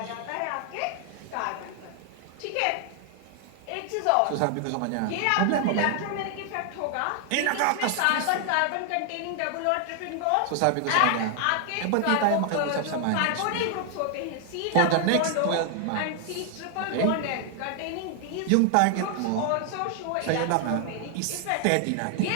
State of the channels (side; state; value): both; different; correlation 0.00